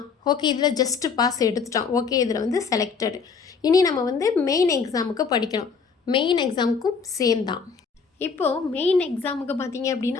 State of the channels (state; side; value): quieter; right; 5.5 dB